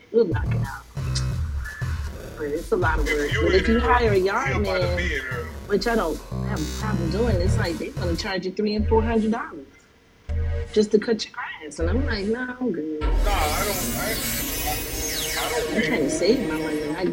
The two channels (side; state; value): both; identical; correlation 1.00